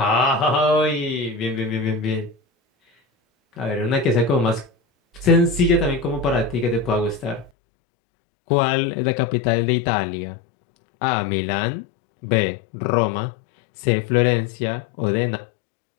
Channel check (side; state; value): right; drops out; at 7.5 s